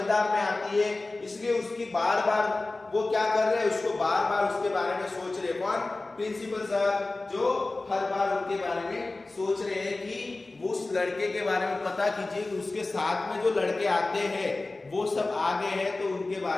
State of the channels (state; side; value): quieter; right; 3.2 dB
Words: में आती है, इसलिए उसकी बार बार वो क्या कर रहे हैं, उसको बार बार उसके बारे में सोच रहे। कौन, प्रिंसिपल सर, जो हर बार उनके बारे में सोच रहे हैं कि वो उस लड़के के बारे में पता कीजिए, उसके साथ में जो लड़के आते हैं वो सब आगे हैं, तो उनके